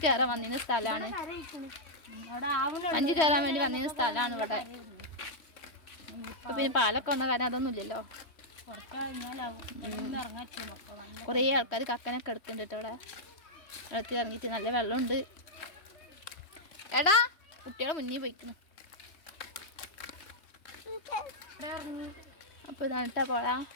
കയറാൻ വന്നിരുന്ന സ്ഥലമാണ്. 5 കയറാൻ വേണ്ടി വന്നിരുന്ന സ്ഥലമാണ് ഇവിടെ. ഇപ്പൊ പിന്നെ പാലൊക്കെ വന്ന കാരണം അതൊന്നും ഇല്ലല്ലോ. കുറേ ആൾക്കാർ കക്കനൊക്കെ എടുക്കുന്നുണ്ട് ഇവിടെ. വെള്ളത്തിൽ ഇറങ്ങിയിട്ട് നല്ല വെള്ളമുണ്ട്. എടാ കുട്ടികളെ മുന്നിൽ പോയിക്കുന്നു. അപ്പൊ ഇതാണ് കേട്ടാ പോഴ.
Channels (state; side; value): late; right; 3.0 ms